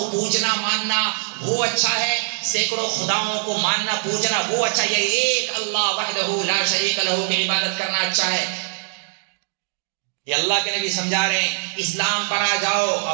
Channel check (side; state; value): left; silent; 62 dB below the other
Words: پوجنا ماننا وہ اچھا ہے، سینکڑوں خداؤں کو ماننا پوجنا وہ اچھا ہے، ایک اللہ وحدہ لا شریک لہ کی عبادت کرنا اچھا ہے۔ یہ اللہ کے نبی سمجھا رہے ہیں، اسلام پر آ جاؤ،